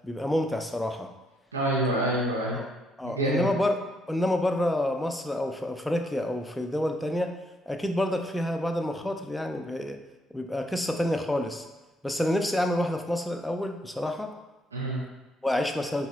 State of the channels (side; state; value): both; normal; correlation 0.75